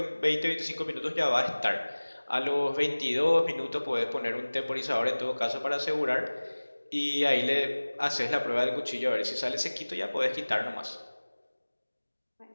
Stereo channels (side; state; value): both; inverted; correlation -1.00